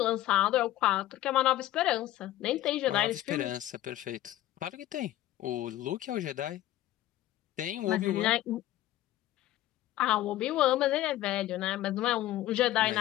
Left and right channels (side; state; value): right; quieter; 14.6 dB